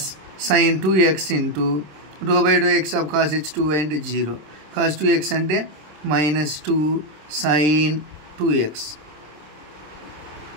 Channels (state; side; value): late; left; 26 ms